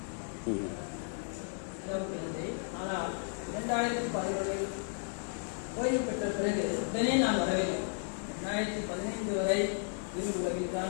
ஆனால் 2011 ஓய்வு பெற்ற பிறகு உடனே நான் வரவில்லை. 2015 வரை இரு உலகில்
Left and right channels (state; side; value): silent; right; 55 dB below the other